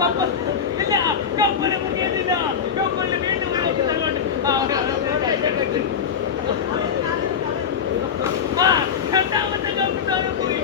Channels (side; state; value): right; quieter; 7.1 dB